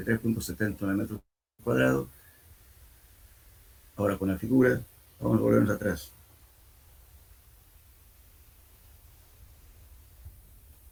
metros cuadrados. Ahora con la figura, vamos a volvernos atrás.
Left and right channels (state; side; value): identical; both; correlation 1.00